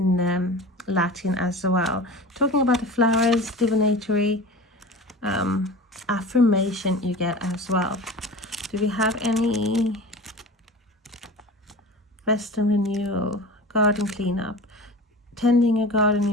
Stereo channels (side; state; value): both; normal; correlation 0.34